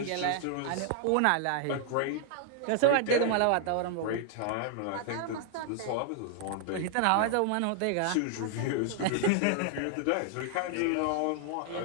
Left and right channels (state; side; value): different; both; correlation 0.00